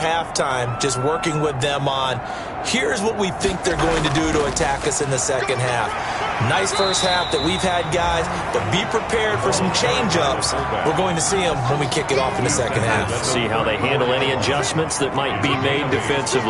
just working with them on, here's what we think they're going to do to attack us in the second half. Nice first half that we've had, guys, but be prepared for some change-ups. We're going to see them when we kick it off in the second half. Let's see how they handle any adjustments that might be made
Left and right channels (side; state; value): both; identical; correlation 1.00